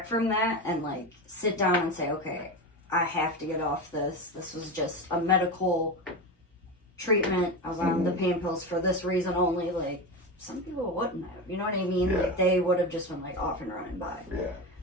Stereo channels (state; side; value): normal; both; correlation 0.21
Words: from that and, like, sit down and say, okay, I have to get off this. This was just a medical treatment. I was on the pain pills for this reason only. Like, some people wouldn't have. You know what I mean? Yeah. Like, they would have just been, like, off and running by. Yeah.